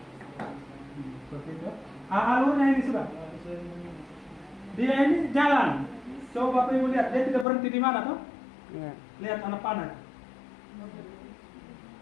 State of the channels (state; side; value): drops out; right; at 7.5 s